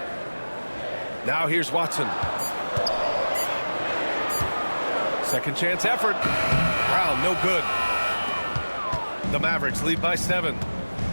Now here's Watson. Second chance effort. Brown, no good. The Mavericks lead by 7.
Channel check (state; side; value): inverted; both; correlation -1.00